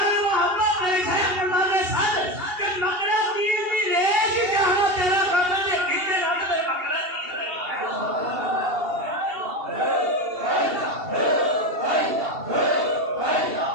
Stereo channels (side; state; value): left; late; 2.7 ms